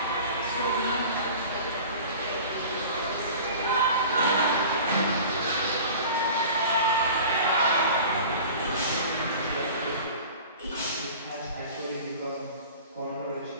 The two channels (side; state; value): both; inverted; correlation -0.40